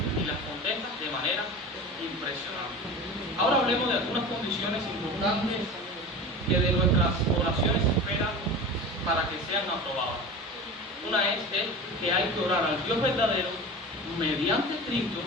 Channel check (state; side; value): normal; both; correlation 0.32